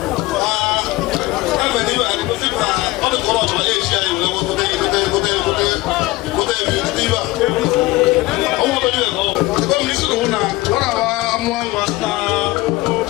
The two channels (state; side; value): quieter; right; 19.5 dB